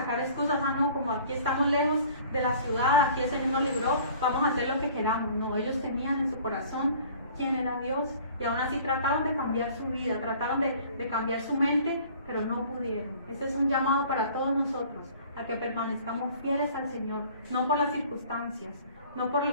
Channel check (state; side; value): inverted; both; correlation -0.49